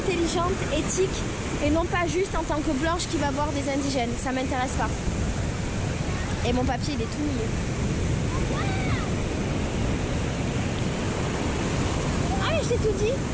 éthique, et non pas juste en tant que blanche qui va voir des indigènes. Ça m'intéresse pas. Et mon papier, il est tout mouillé. Ah mais je t'ai tout dit.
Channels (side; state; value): both; identical; correlation 1.00